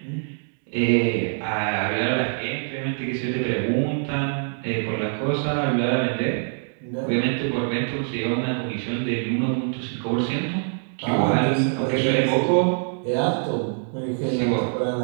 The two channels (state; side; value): silent; left; 62 dB below the other